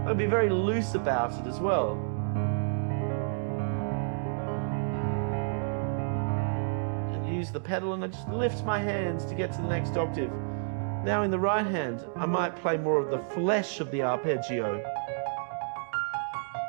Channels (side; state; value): left; silent; digital silence